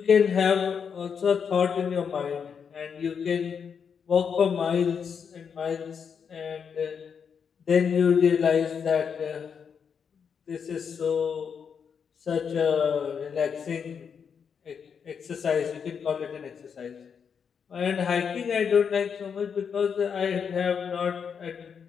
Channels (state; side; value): quieter; right; 6.8 dB